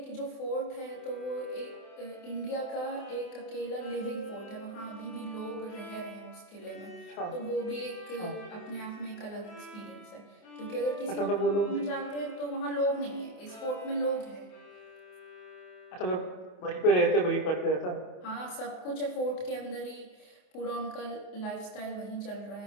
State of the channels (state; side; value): late; right; 27 ms